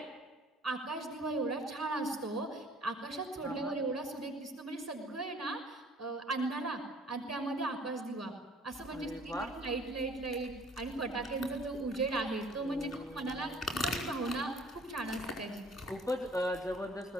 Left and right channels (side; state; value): both; normal; correlation 0.54